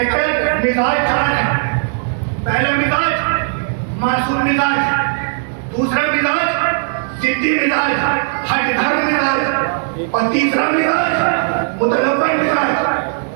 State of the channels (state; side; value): silent; left; 64 dB below the other